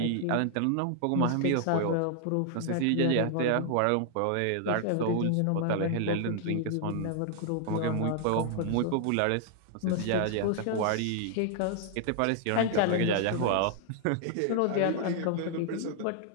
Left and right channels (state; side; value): different; both; correlation 0.00